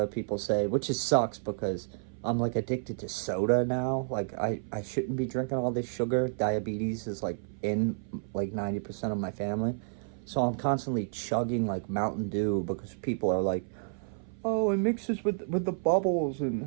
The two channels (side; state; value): left; silent; 55 dB below the other